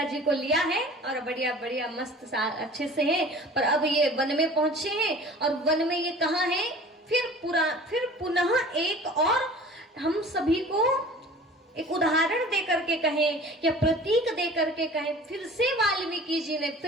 जी को लिया है और बढ़िया बढ़िया मस्त अच्छे से है, पर अब ये वन में पहुंचे हैं। और वन में ये कहाँ है? फिर पुनः एक और हम सभी को एक उदाहरण दे करके कहें या प्रतीक दे करके कहें, फिर से वाल्मीकि जी ने,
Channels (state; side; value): normal; both; correlation 0.44